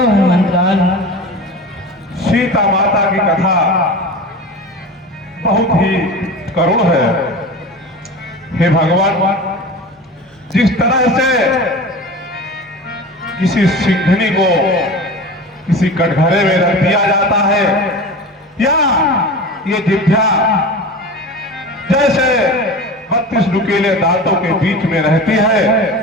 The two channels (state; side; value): normal; both; correlation 0.33